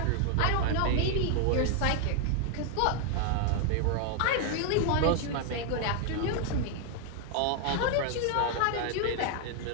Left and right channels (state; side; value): different; both; correlation 0.00